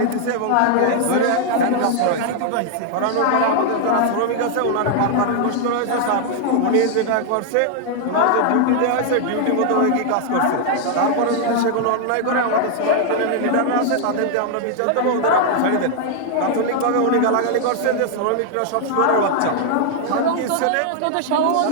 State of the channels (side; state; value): both; different; correlation 0.00